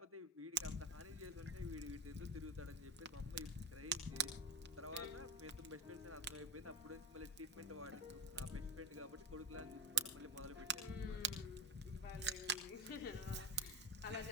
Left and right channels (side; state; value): both; normal; correlation 0.20